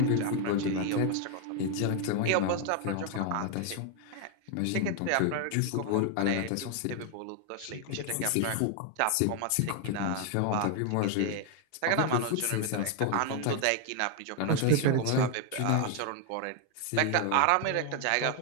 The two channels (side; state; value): both; different; correlation 0.00